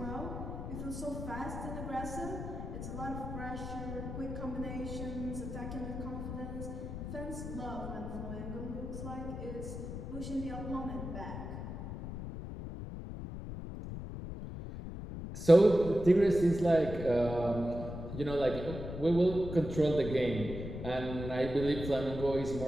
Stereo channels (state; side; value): noise; left; rumble, 7 dB below the sound